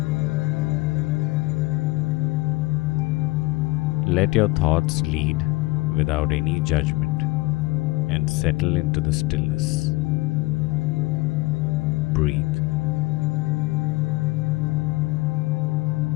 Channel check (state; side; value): quieter; right; 22.4 dB